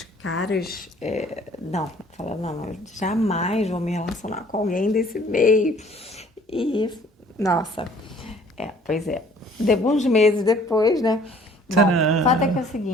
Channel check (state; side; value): normal; both; correlation 0.55